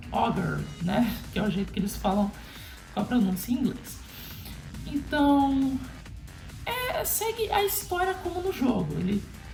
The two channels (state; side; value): identical; both; correlation 1.00